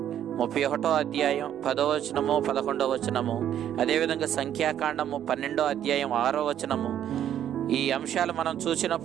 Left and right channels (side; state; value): left; quieter; 10.5 dB